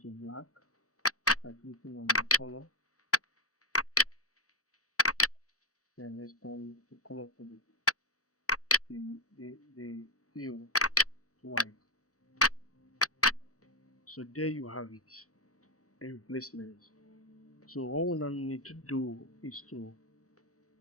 to black by clicking on the color. Then let's turn the color for the hue to white. So there you have it, a replacement. So all we now need to do is to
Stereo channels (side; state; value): right; late; 0.66 ms